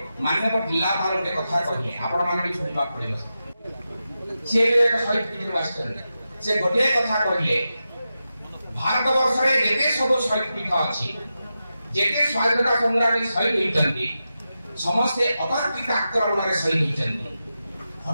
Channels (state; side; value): inverted; both; correlation -0.90